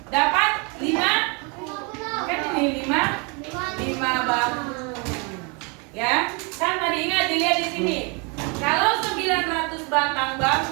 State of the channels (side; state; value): left; quieter; 32.1 dB